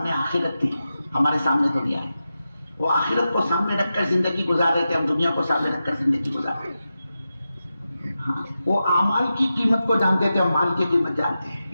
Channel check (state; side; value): inverted; both; correlation -0.91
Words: آخرت تھی، ہمارے سامنے دنیا ہے۔ وہ آخرت کو سامنے رکھ کر زندگی گزار رہے تھے، ہم دنیا کو سامنے رکھ کر زندگی گزار رہے ہیں۔ ہاں، وہ اعمال کی قیمت کو جانتے تھے، ہم مال کی قیمت جانتے ہیں،